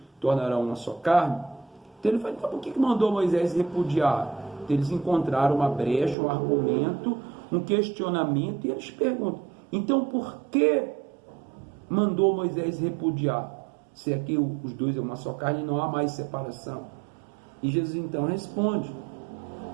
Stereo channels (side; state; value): left; drops out; at 6.2 s